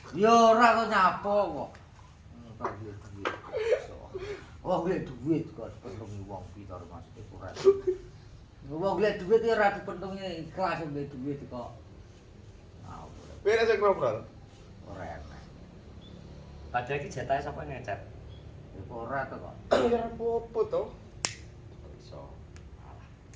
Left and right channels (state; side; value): identical; both; correlation 1.00